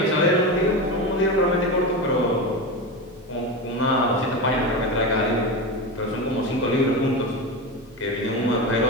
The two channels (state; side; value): normal; both; correlation 0.21